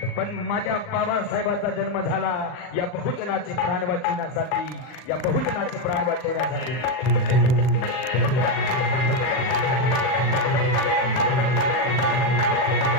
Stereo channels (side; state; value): right; late; 39 ms